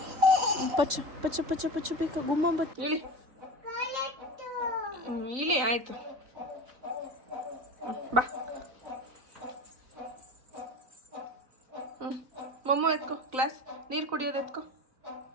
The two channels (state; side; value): late; left; 3.9 ms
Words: ಪಚ್ಚು ಪಚ್ಚು ಪಚ್ಚು ಪಚ್ಚು ಬೇಕು. ಗುಮ್ಮ ಇಳಿ ಇಳಿ, ಆಯ್ತು ಬಾ. ಮೊಮ್ಮ ಎತ್ಕೋ, ಗ್ಲಾಸ್ ನೀರು ಕುಡಿಯೋದು ಎತ್ಕೋ,